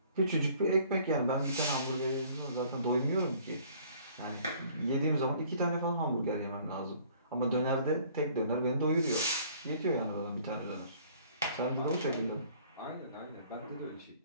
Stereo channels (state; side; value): inverted; both; correlation -0.56